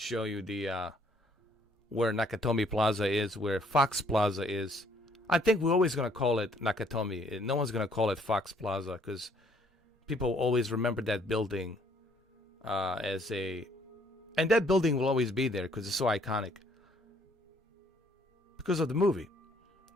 you the where Nakatomi Plaza is, where Fox Plaza is. I think we're always going to call it Nakatomi. No one's going to call it Fox Plaza because people always remember that building as a... And that building will always be there because it's so iconic. Because of the movie,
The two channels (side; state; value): both; normal; correlation 0.64